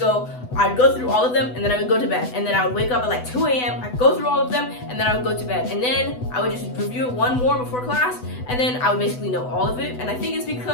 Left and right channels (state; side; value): late; right; 8.0 ms